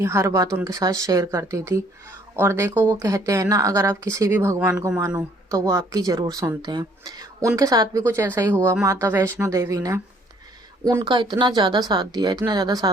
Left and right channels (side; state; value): both; normal; correlation 0.62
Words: हर बात उनके साथ शेयर करती थी। और देखो, वो कहते हैं ना, अगर आप किसी भी भगवान को मानो तो वो आपकी ज़रूर सुनते हैं। उनके साथ भी कुछ ऐसा ही हुआ। माता वैष्णो देवी ने उनका इतना ज़्यादा साथ दिया, इतना ज़्यादा